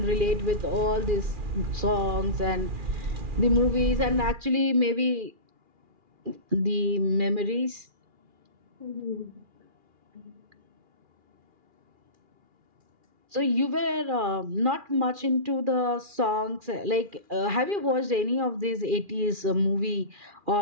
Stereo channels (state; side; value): late; left; 2.4 ms